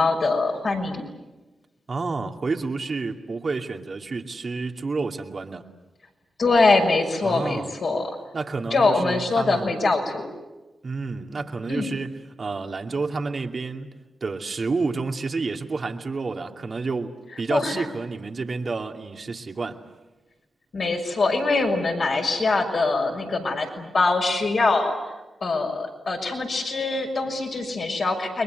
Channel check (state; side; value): normal; both; correlation 0.89